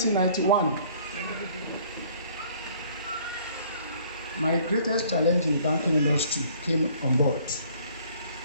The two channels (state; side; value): inverted; both; correlation -0.57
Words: my greatest challenge in the banking industry came on board.